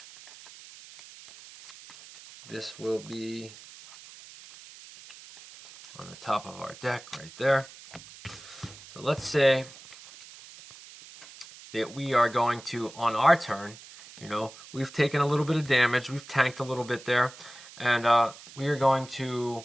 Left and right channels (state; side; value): noise; right; hiss, 18 dB below the sound